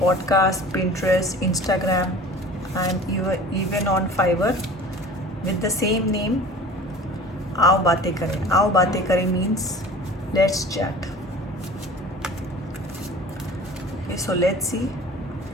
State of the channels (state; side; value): normal; both; correlation 0.43